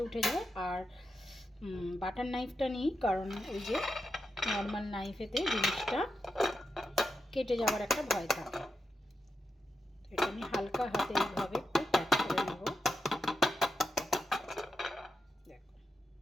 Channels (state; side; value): normal; both; correlation 0.87